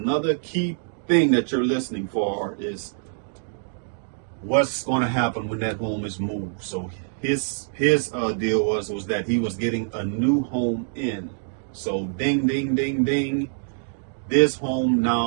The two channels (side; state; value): left; silent; digital silence